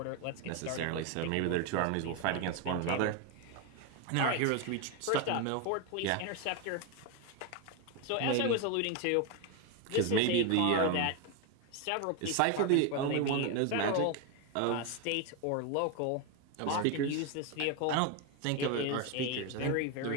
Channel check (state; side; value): different; both; correlation 0.02